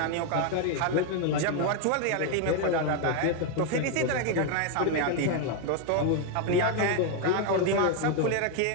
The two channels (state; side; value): different; both; correlation 0.01